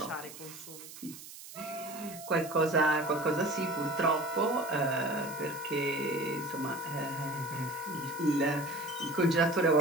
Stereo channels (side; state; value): right; noise; hiss, 15 dB below the sound